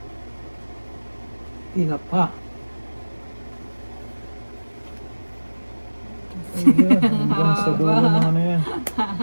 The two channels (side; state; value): both; inverted; correlation -1.00